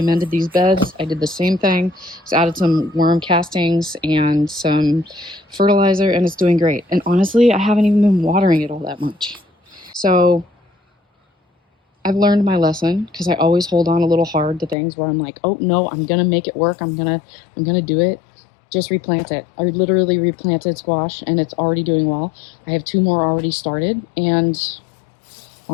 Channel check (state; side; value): drops out; right; at 14.8 s